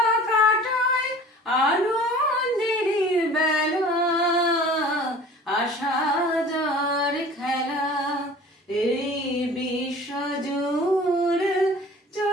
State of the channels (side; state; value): both; normal; correlation 0.44